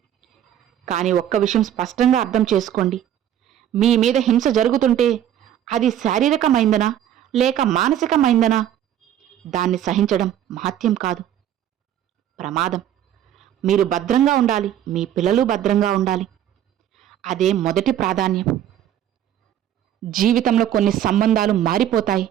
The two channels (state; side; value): quieter; left; 10.9 dB